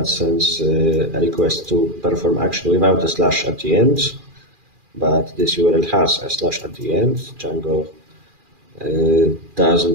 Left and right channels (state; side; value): late; left; 2.4 ms